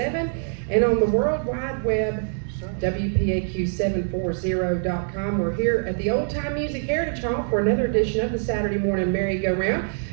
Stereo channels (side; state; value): left; silent; digital silence